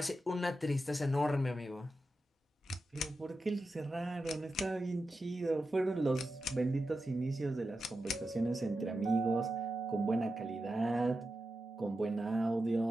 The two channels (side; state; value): both; normal; correlation 0.90